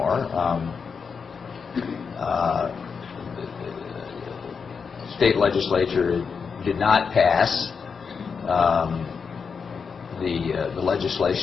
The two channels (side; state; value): right; quieter; 5.8 dB